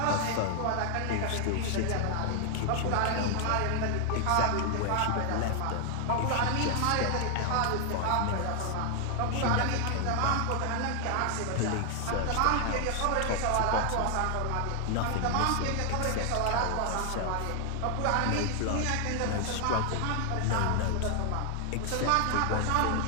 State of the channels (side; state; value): both; different; correlation 0.00